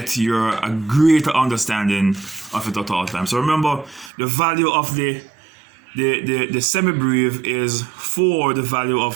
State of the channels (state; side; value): drops out; left; at 4.1 s